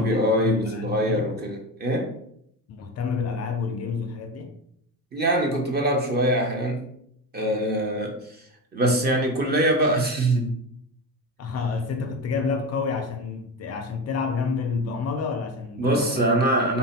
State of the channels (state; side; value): normal; both; correlation 0.22